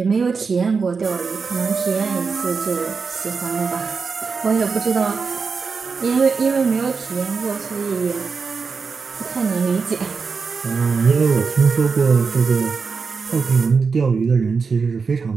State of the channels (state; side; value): quieter; left; 5.1 dB